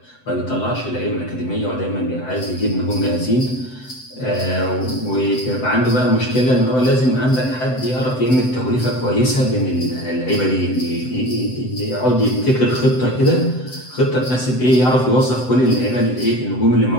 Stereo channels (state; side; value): late; right; 7.9 ms